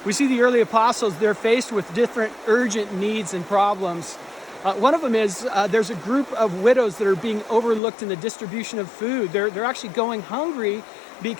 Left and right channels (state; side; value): drops out; right; at 7.8 s